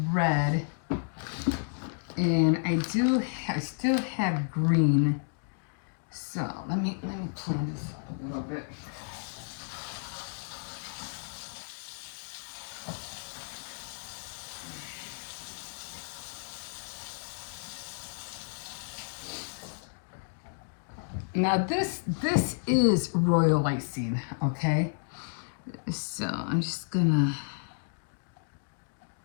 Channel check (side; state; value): right; silent; digital silence